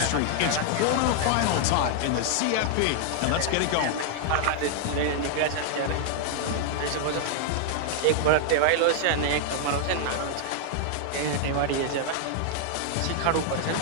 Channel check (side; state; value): both; different; correlation 0.00